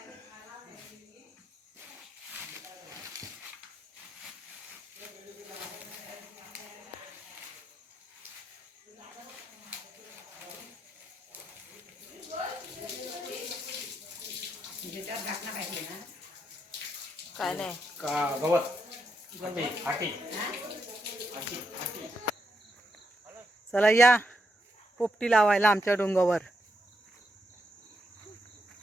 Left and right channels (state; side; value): normal; both; correlation 0.81